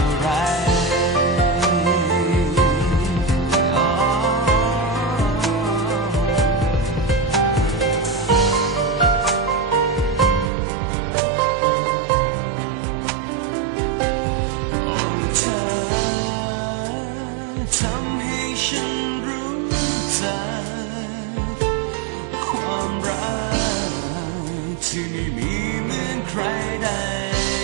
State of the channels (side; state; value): left; drops out; at 10.5 s